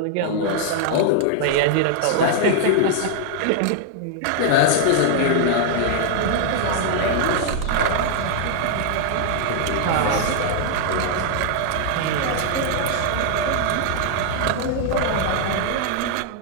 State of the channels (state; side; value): different; both; correlation -0.01